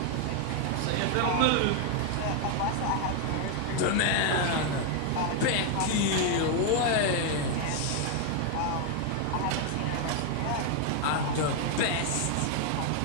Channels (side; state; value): both; different; correlation 0.01